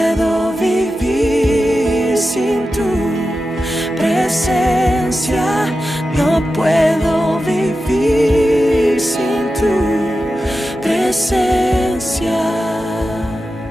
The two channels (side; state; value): both; normal; correlation 0.92